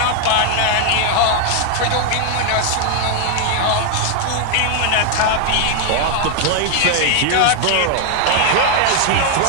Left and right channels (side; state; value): both; different; correlation 0.00